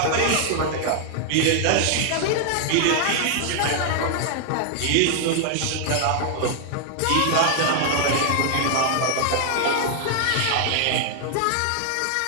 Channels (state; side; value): different; both; correlation 0.00